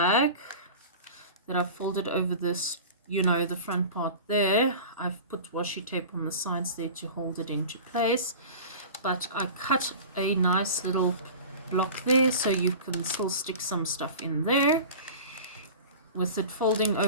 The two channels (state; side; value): inverted; both; correlation -0.35